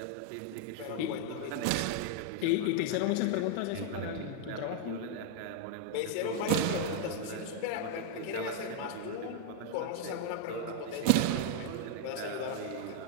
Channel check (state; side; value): different; both; correlation 0.00